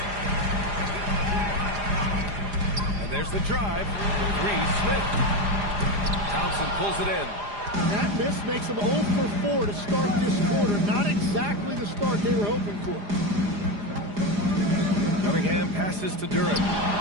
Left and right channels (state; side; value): late; left; 4.9 ms